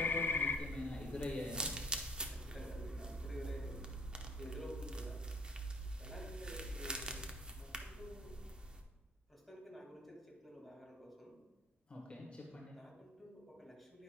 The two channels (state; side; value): normal; both; correlation 0.54